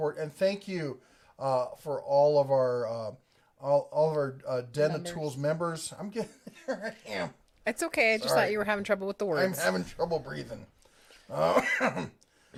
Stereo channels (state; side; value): identical; both; correlation 1.00